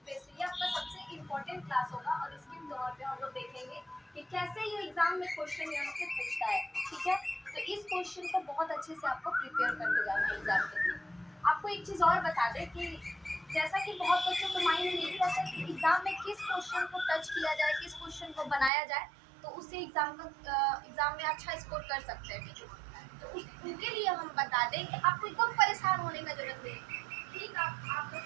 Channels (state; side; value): drops out; left; at 18.7 s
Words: बेस्ड है। ये आपका सबसे इम्पोर्टेंट क्लास होगा और इसके तौर पे हम लोग देखेंगे कि कैसे ये एग्जाम में क्वेश्चन यहाँ से पूछता है, ठीक है। तो इस क्वेश्चन को बहुत अच्छे से आपको प्रिपेयर करके जाना है एग्जाम के लिए। आपको एक चीज़ और बता दें कि जैसा कि बहुत बच्चों को माइंड में नहीं रहता कि एग्जाम में किस क्वेश्चन को टच किया जाए, किस क्वेश्चन को बनाया जाए तो उससे एग्जाम में अच्छा स्कोर कर सकते हैं, ठीक है। तो उनके लिए हम बता दें कि आपको एकदम परेशान होने का जरूरत नहीं है। ठीक, आप लोग